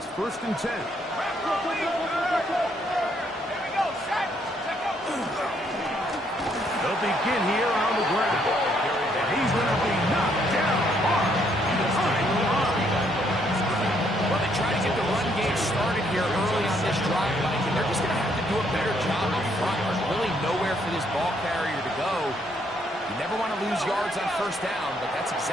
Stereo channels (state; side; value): normal; both; correlation 0.70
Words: 1st and 10. They'll begin here on the ground. And he's going to be knocked down hard behind the line. Well, they try to get the run game started here early on this drive, Mike, and they're just going to have to do a better job up front. There's really nowhere for this ball carrier to go. You never want to lose yards on 1st down, but that's